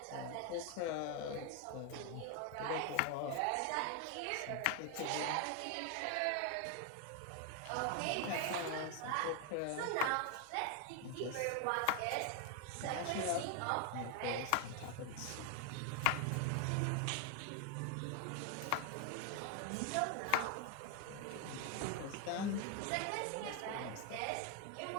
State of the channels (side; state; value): both; different; correlation 0.01